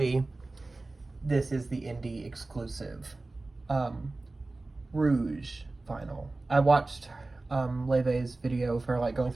this is the indie exclusive Rouge vinyl. I watched Laufey's video for like going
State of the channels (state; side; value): quieter; left; 3.2 dB